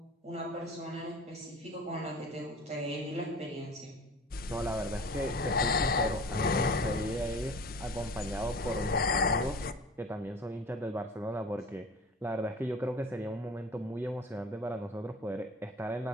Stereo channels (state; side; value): normal; both; correlation 0.39